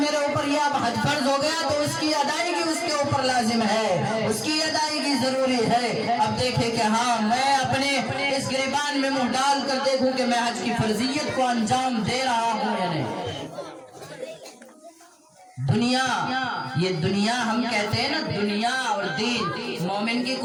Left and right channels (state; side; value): identical; both; correlation 1.00